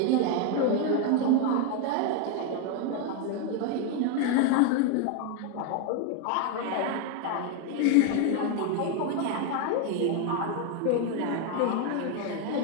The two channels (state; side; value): different; both; correlation 0.01